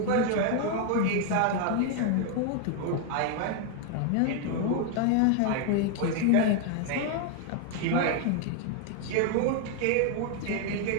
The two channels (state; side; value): different; both; correlation 0.00